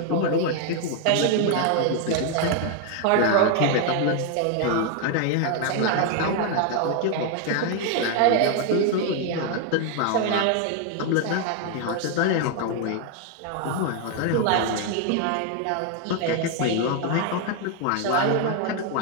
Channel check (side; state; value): both; different; correlation 0.01